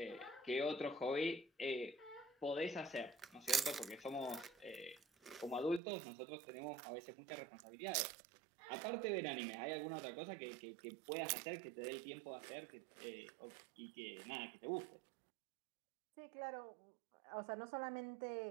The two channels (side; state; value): left; drops out; at 5.8 s